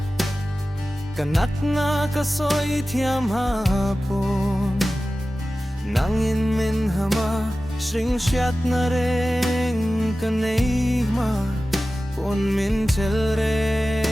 kanak na kasoi thiam hapon nangin min hama sring shat na reng kanei ma pon min chel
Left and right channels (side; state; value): both; normal; correlation 0.95